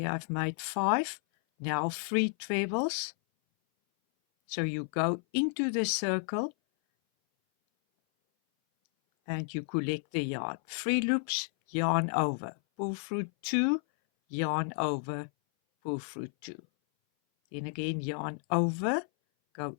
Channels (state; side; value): silent; right; 57 dB below the other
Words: I've made 5. Now 3 trebles. So you go into the circle and you collect the yarn. 3 loops, yarn over, pull through 2, yarn over, pull through 2. Then again, yarn over, go